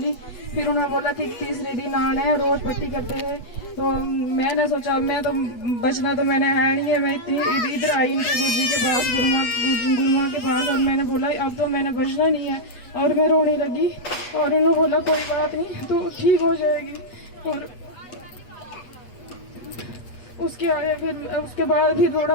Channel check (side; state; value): right; late; 8.2 ms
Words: फिर उन्होंने बोला कि तीसरे दिन आना है, रोज पट्टी करते हैं। तो मैंने सोचा मैं तो बचना तो मैंने है नहीं है, मैं इधर आई इनके गुरुजी के पास, गुरुमा के पास, और मैंने बोला अब तो मैंने बचना नहीं है। और मैं रोने लगी और उन्होंने बोला कोई बात नहीं तो ठीक हो जाएगी। और उसके बाद फिर थोड़ा